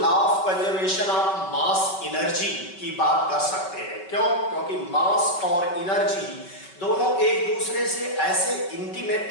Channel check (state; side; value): late; right; 5.3 ms